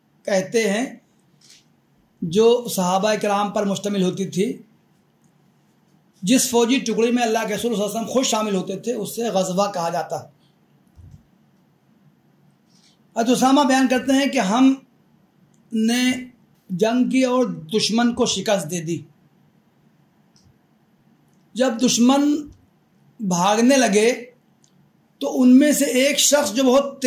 कहते हैं जो सहाबा किराम पर मुश्तमिल होती थी। जिस फौजी टुकड़ी में अल्लाह के रसूल सल्लल्लाहु अलैहि वसल्लम खुद शामिल होते थे उससे ग़ज़वा कहा जाता। उसामा बयान करते हैं कि हमने जंग की और दुश्मन को शिकस्त दे दी। जब दुश्मन भागने लगे तो उनमें से एक शख्स जो बहुत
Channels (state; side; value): identical; both; correlation 1.00